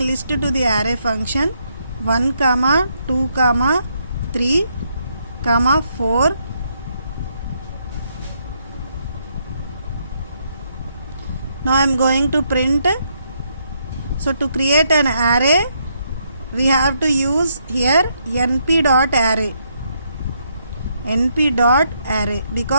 list to the array function 1, 2, 3, 4. Now I am going to print. So to create an array, we have to use here np.array. np.array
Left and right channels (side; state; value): both; inverted; correlation -0.75